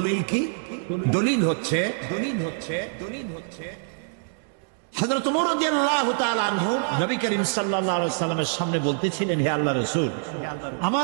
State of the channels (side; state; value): left; silent; digital silence